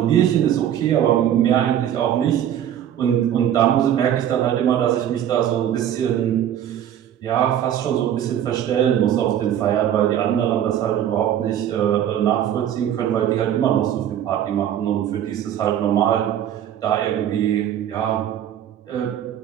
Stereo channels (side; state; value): left; quieter; 10.5 dB